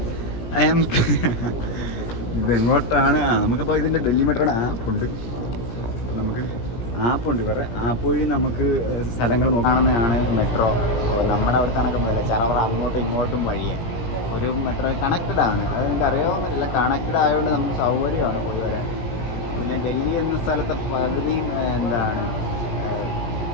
ഇതെങ്ങോട്ടാണ്? നമുക്കപ്പോൾ ഇതിൻ്റെ ഡൽഹി മെട്രോയുടെ ആപ്പുണ്ട്. നമുക്ക് ആപ്പുണ്ട്, ഇവരുടെ ആപ്പ് വഴി നമുക്ക് സ്ഥലങ്ങൾ നോക്കാണെന്നാണ് മെട്രോ. നമ്മുടെ അവിടെ കണക്ക് ചറവറ അങ്ങോട്ടും ഇങ്ങോട്ടും വഴിയാണ്. ഒരു മെട്രോ കണക്റ്റഡ് ആണ്, അത് നിങ്ങൾക്ക് അറിയാൻ പറ്റില്ല. കണക്റ്റഡ് ആയതുകൊണ്ട് നമുക്ക് സൗകര്യമാണ് വരാൻ. പിന്നെ ഡൽഹി എന്ന സ്ഥലത്തെ പകുതിയും എന്താണ്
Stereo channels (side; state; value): right; late; 17 ms